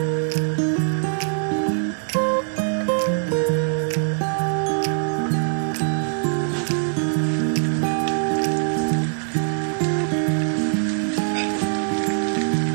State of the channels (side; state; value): left; silent; digital silence